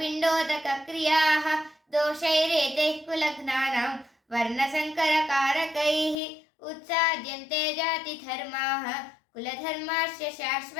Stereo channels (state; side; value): drops out; right; at 6.2 s